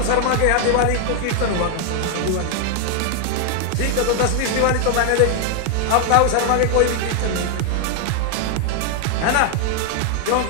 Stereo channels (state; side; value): different; both; correlation 0.00